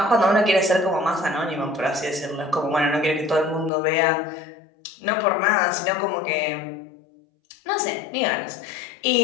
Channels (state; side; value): drops out; right; at 3.7 s